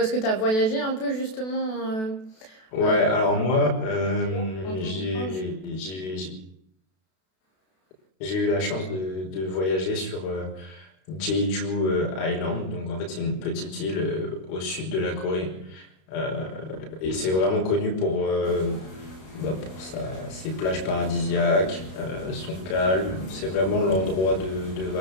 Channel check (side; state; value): right; late; 32 ms